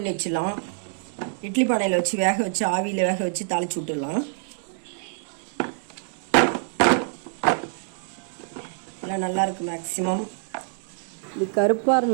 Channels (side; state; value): left; silent; digital silence